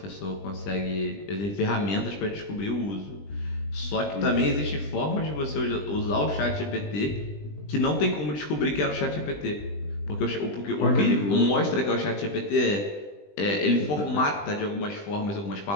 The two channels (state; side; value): late; right; 20 ms